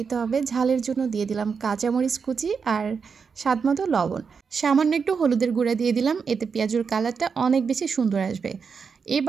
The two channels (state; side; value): quieter; left; 5.8 dB